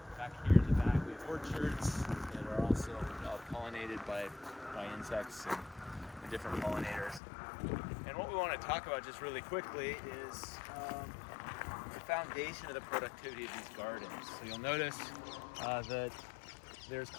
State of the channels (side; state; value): right; drops out; at 7.2 s